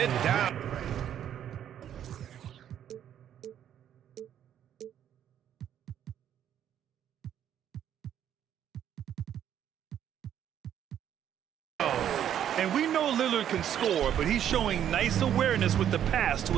down. And we know Lillard can score, but he's showing nice awareness with the pass to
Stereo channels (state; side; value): quieter; left; 10.1 dB